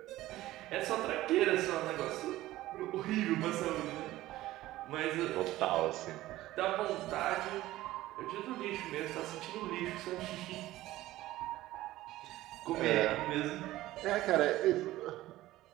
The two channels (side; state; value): left; quieter; 16.1 dB